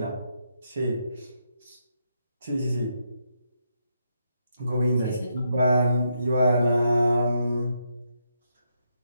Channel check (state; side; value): inverted; both; correlation -0.80